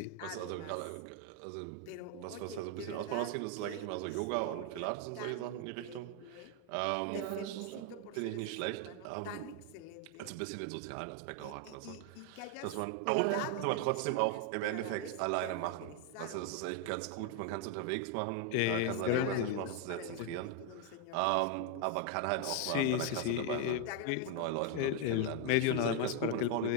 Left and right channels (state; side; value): different; both; correlation 0.01